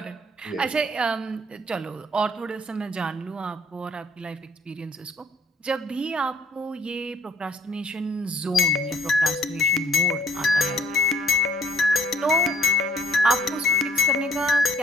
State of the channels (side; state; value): both; normal; correlation 0.59